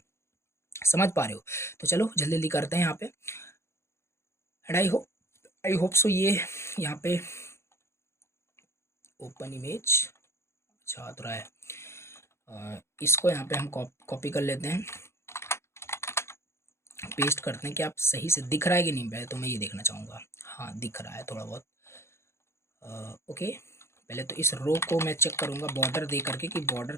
समझ पा रहे हो। तो चलो जल्दी जल्दी करते हैं यहाँ पे, एंड आई होप सो ये यहाँ पे ओपन इमेज अच्छा आ रहा है। इसको यहाँ पे हम कॉपी कर लेते हैं, पेस्ट करते हैं, कि आप सही से दिख रहा है कि नहीं, पहले तो मैं ये देखना चाहूँगा, हाँ दिख रहा है थोड़ा बहुत, ओके। पहले तो इस रो को मैं चेक करूँगा बॉर्डर दे करके कि बॉर्डर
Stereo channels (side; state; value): right; late; 0.13 ms